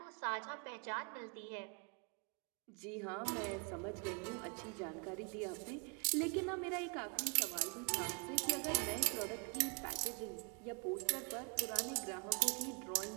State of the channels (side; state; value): left; quieter; 36.4 dB